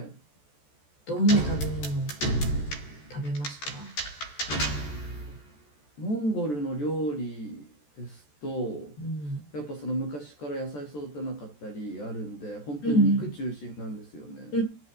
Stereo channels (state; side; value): late; right; 14 ms